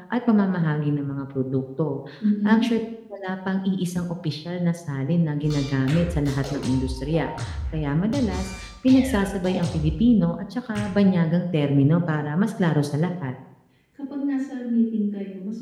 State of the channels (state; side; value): identical; both; correlation 1.00